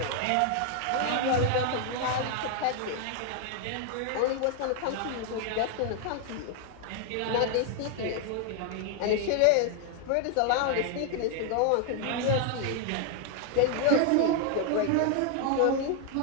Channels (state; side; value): different; both; correlation 0.00